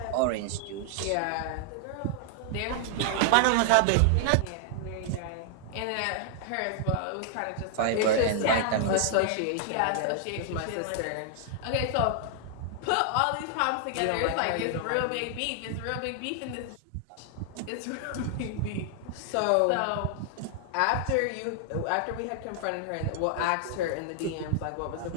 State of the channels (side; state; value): both; different; correlation 0.00